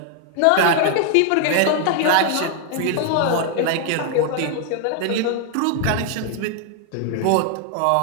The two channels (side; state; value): both; different; correlation 0.00